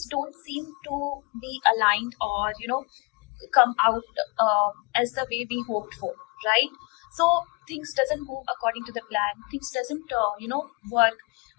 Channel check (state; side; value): quieter; right; 28.7 dB